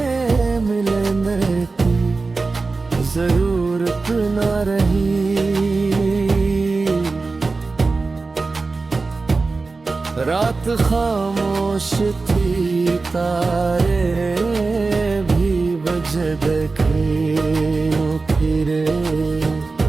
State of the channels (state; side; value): quieter; left; 3.9 dB